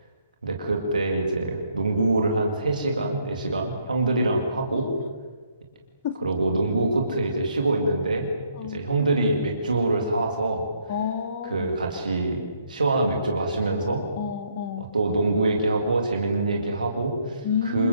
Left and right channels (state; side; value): inverted; both; correlation -0.70